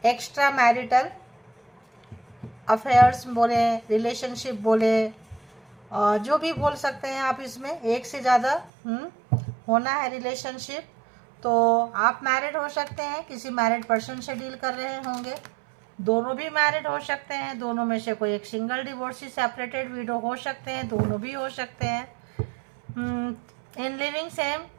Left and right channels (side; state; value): left; drops out; at 8.7 s